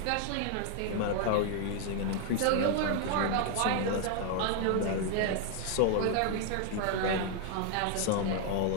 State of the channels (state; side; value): different; both; correlation 0.00